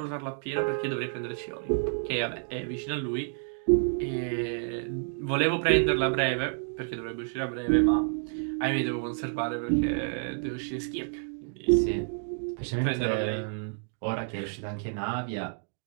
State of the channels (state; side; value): silent; left; 58 dB below the other